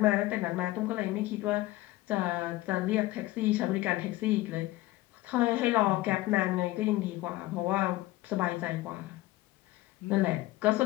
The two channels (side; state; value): right; quieter; 17.7 dB